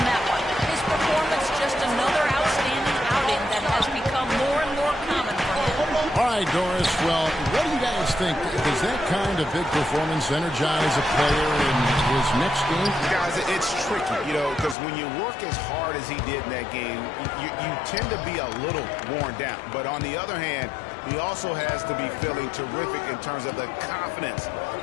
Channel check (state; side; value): drops out; right; at 14.8 s